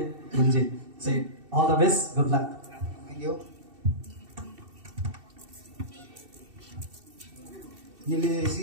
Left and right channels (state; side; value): late; left; 2.7 ms